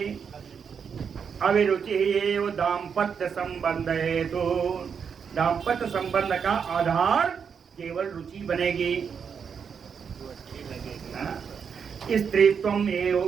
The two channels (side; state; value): left; quieter; 6.7 dB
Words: अभिरुचि ही दाम्पत्य संबंध हेतु, दाम्पत्य संबंध का आधार केवल रुचि बनेगी। स्त्रीत्वम एव